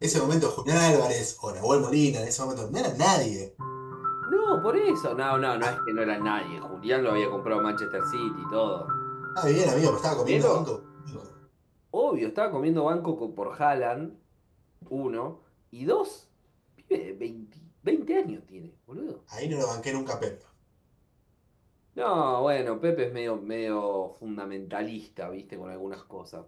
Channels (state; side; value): identical; both; correlation 1.00